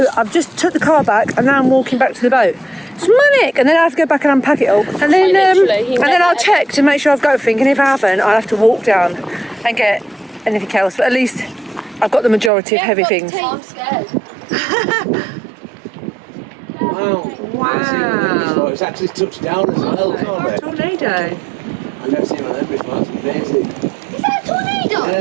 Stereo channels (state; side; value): drops out; left; at 12.5 s